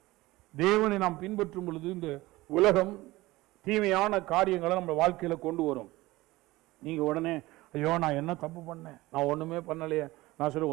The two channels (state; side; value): quieter; left; 19.2 dB